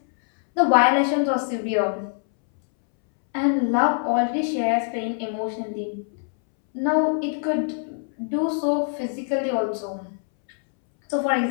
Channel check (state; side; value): silent; right; 63 dB below the other